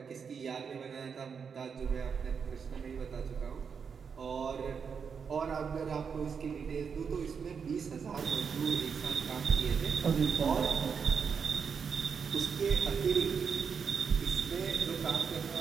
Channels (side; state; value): left; quieter; 6.3 dB